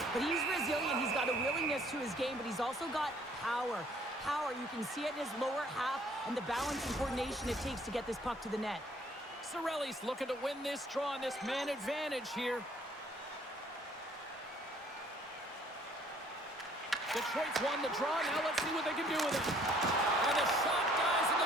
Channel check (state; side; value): normal; both; correlation 0.60